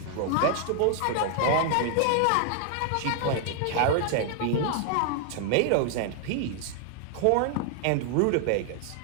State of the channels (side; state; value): both; different; correlation 0.00